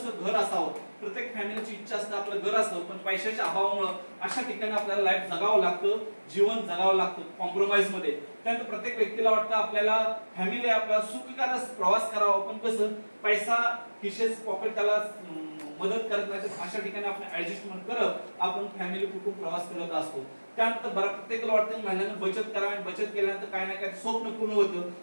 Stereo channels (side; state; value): both; inverted; correlation -1.00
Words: घर असावं. प्रत्येक फॅमिलीची इच्छा असते आपलं घर असावं. पण पैशाच्या अभावामुळे अशा ठिकाणी आपल्याला लाईफ जगावं लागतं, जीवन जगावं लागतं कॉम्प्रोमाइज मध्ये. त्यानंतर प्रत्येक व्यक्तीला वाटतं आपल्याला फॅमिली आपला सुखकर प्रवास करावा पण कसं पैसा खिशेच पॉकेट त्याला मदत करत नाही. अशा ठिकाणी आपण ऍडजस्टमेंट करत आपण फॅमिली कुटुंब प्रवास करत असतो. त्यानंतर प्रत्येकाला वाटतं महिन्यानं बचत करावी. बचत केल्यानंतर काय ना काय स्वप्न पूर्ण होतं.